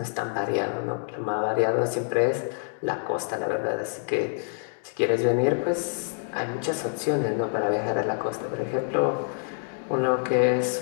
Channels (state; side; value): silent; right; digital silence